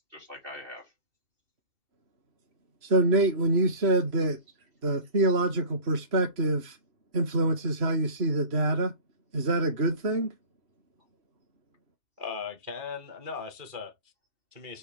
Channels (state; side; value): late; left; 3.0 ms